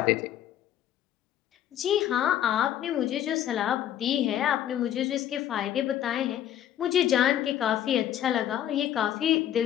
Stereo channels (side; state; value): right; quieter; 11.2 dB